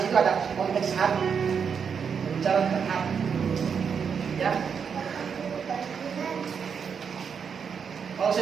situ ada konteks hati, berbicara tentang hati, ya. Kalau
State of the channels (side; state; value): left; quieter; 6.7 dB